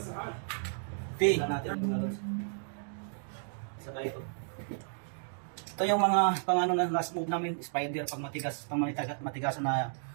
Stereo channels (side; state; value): left; silent; digital silence